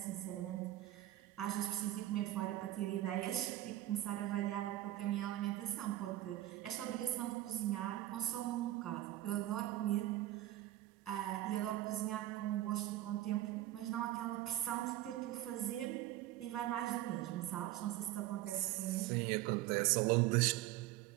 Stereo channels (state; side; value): quieter; left; 14.7 dB